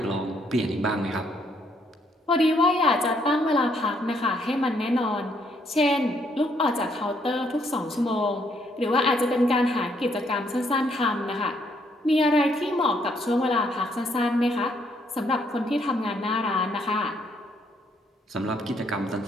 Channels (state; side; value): normal; both; correlation 0.70